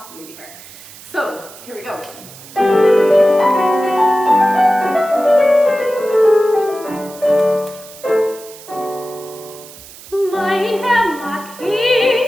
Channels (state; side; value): noise; right; hiss, 18 dB below the sound